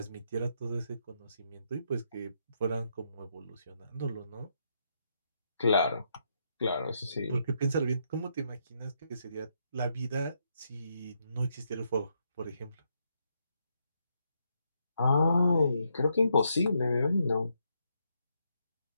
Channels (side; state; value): both; inverted; correlation -0.78